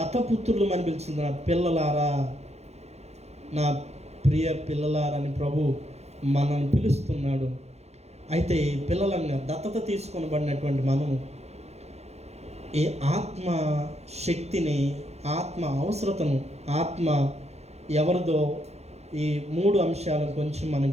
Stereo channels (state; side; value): late; left; 0.31 ms